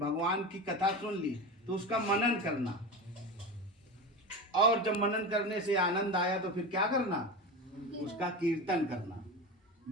की कथा सुन ली तो उसका मनन करना, और जब मनन करने से आनंद आया तो फिर क्या करना? उसका कीर्तन करना।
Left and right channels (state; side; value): normal; both; correlation 0.25